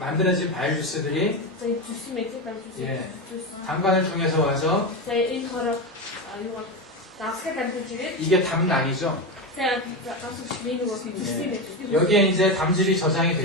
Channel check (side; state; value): both; normal; correlation 0.16